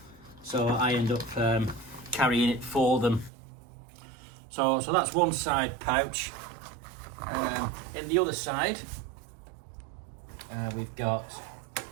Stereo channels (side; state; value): left; drops out; at 3.3 s